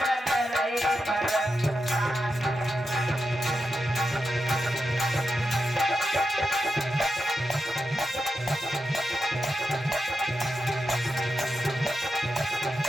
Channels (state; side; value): normal; both; correlation 0.88